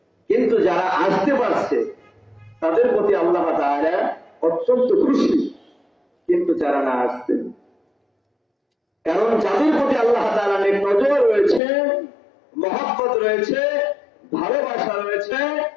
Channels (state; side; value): drops out; right; at 11.6 s